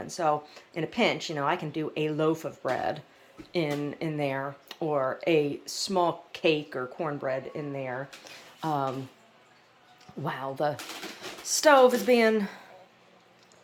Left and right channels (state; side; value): identical; both; correlation 1.00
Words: so in a pinch, I can do a loaf of bread in there, or a small cake or cornbread in there. While the stove is being